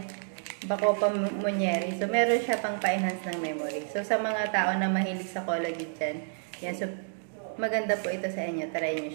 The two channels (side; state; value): left; silent; digital silence